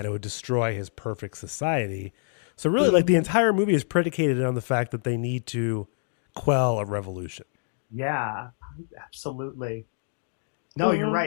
it would destroy his perfect society. So really, like, the entire movie is predicated on the fact that they need to quell a revolution. Yeah, absolutely. No, you're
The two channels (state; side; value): silent; right; 61 dB below the other